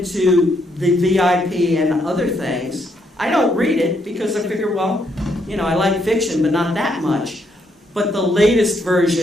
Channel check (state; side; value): normal; both; correlation 0.75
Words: the VIP and other things. I don't read it because I figure, well, you know, I like fiction, but not that much. But the latest